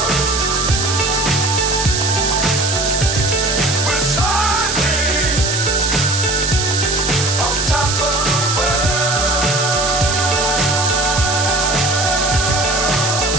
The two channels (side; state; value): right; noise; hiss, 1 dB below the sound